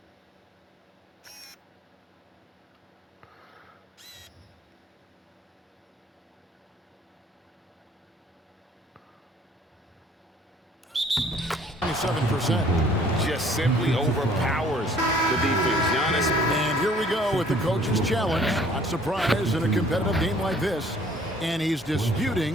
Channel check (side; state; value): both; normal; correlation 0.57